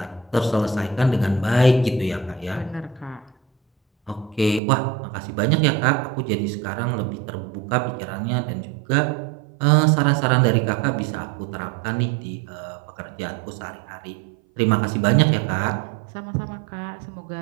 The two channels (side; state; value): left; drops out; at 4.6 s